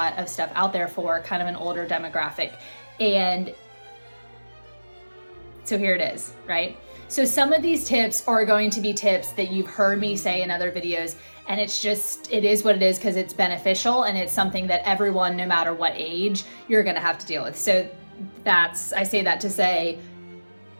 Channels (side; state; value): both; inverted; correlation -1.00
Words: of stuff out there for kind of an older demographic. And so here it is, right? So some of these tips are going to be tips that you've heard me say in other videos, and it is what it is because it's beneficial and it's something that everyone, no matter what age, you're gonna have to deal with. So I say that to say,